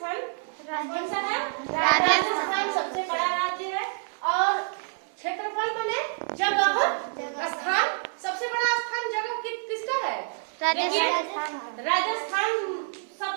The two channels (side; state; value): left; silent; 56 dB below the other